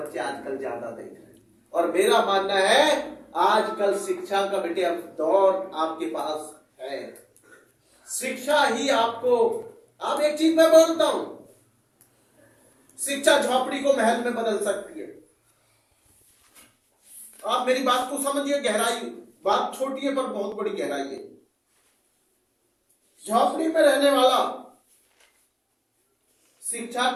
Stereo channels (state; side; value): identical; both; correlation 1.00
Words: आजकल ज्यादा देख रहे हैं। और मेरा मानना है आजकल शिक्षा का बेटे अब दौर आपके पास है। शिक्षा ही आपको, आप एक चीज मैं बोलता हूं, शिक्षा झोपड़ी को महल में बदल सकती है। आप मेरी बात को समझिए, गहराई, बात छोटी है पर बहुत बड़ी गहराई है। झोपड़ी में रहने वाला शिक्षा